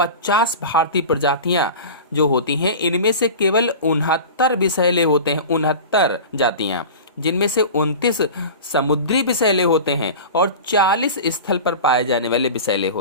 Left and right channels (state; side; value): inverted; both; correlation -0.33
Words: भारतीय प्रजातियां जो होती हैं, इनमें से केवल 69 विषैले होते हैं, 69 जातियां, जिनमें से 29 समुद्री विषैले होते हैं और 40 स्थल पर पाए जाने वाले विषैले